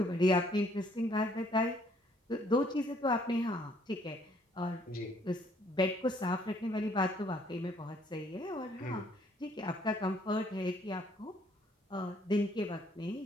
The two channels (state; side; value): normal; both; correlation 0.64